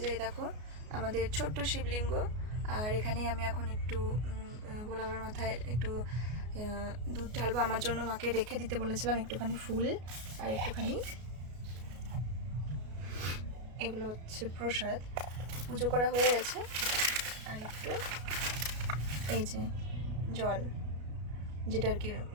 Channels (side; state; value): left; late; 33 ms